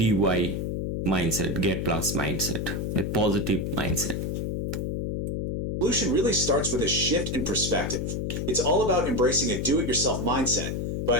mindset, Get Plus mindset, a positive mindset. Solution really starts with a shift in perspective. It's all about embracing a do-it-yourself mindset,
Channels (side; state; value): left; noise; hum, 2 dB below the sound